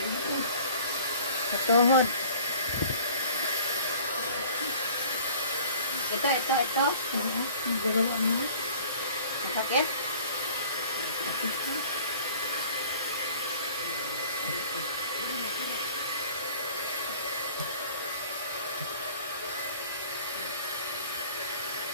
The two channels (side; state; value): both; inverted; correlation -0.48